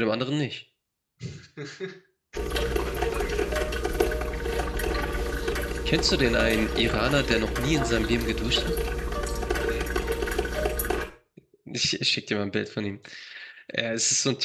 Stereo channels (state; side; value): identical; both; correlation 1.00